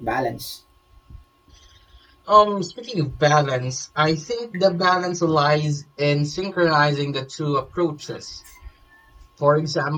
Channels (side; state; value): both; identical; correlation 1.00